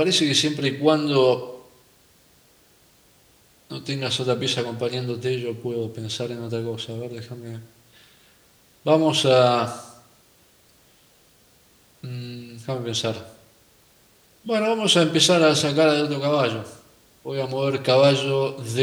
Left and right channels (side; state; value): both; identical; correlation 1.00